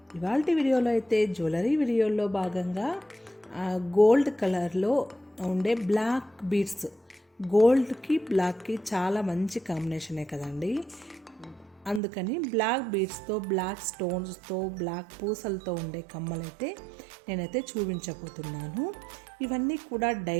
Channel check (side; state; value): left; drops out; at 12.0 s